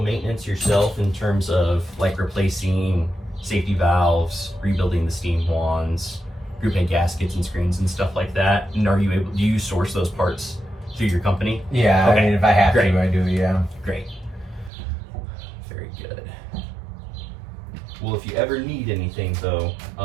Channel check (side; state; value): left; drops out; at 14.7 s